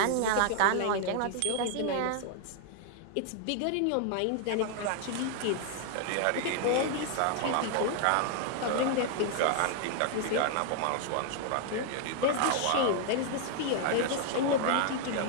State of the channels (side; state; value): both; different; correlation 0.00